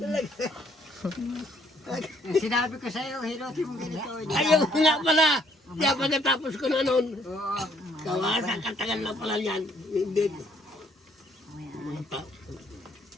Sinabi ko sa'yo, hilotin mo ganito. Ayaw ko nga pala. Kaya pagkatapos ko na noon. Kawasan, katagal na pala yan. Hindi.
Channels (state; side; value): normal; both; correlation 0.65